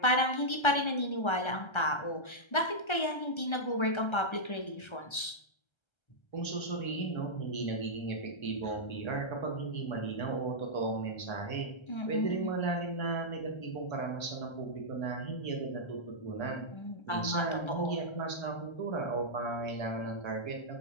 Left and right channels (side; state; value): right; late; 1.3 ms